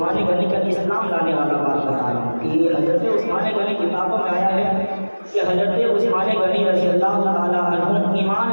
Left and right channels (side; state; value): both; inverted; correlation -1.00